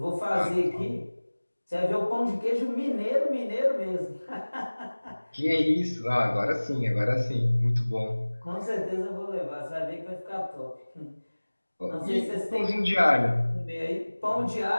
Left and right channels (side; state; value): both; inverted; correlation -1.00